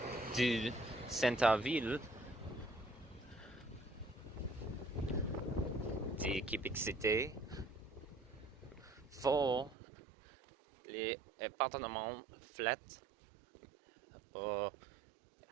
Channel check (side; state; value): left; drops out; at 9.8 s